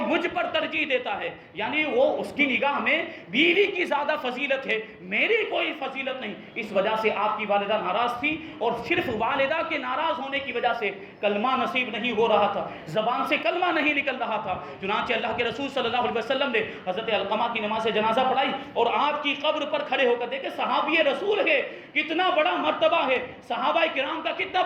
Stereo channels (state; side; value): identical; both; correlation 1.00